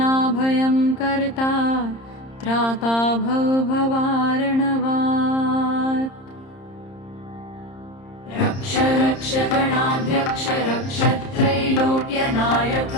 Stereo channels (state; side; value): late; right; 30 ms